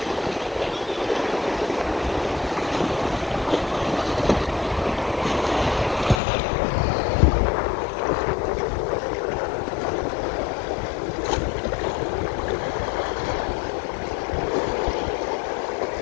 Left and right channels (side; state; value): right; drops out; at 6.2 s